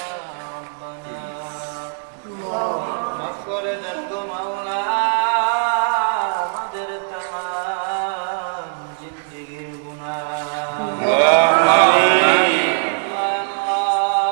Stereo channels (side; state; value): left; silent; digital silence